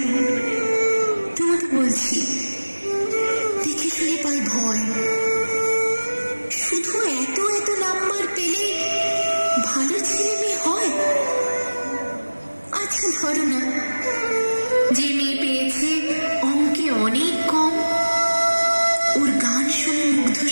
তোমাকে বলছি, দেখে শুনে পাই ভয়। শুধু এত এত নাম্বার পেলে ভালো ছেলে মেয়ে হয়? আচ্ছা ধরো না, যে মেয়ে পেয়েছে অঙ্কে অনেক কম, ওর গান শুনে মুগ্ধ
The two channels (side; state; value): both; inverted; correlation -1.00